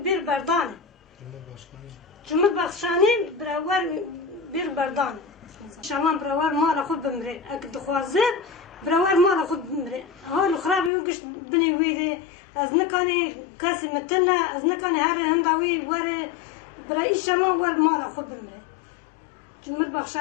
bir berdane. Cumhurbaşkanı beraber bir berdane. Şama beraber mala khud bimre. Ak duhazet beraber mala khud bimre. Halu khrabi wi gish bini wida. از نکنی کسی متنه از نکنی هر هنداوی وره برای شما ور مالا خود بمره.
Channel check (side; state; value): right; drops out; at 10.9 s